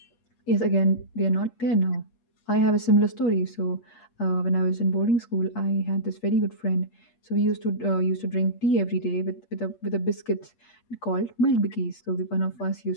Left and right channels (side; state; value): right; late; 8.5 ms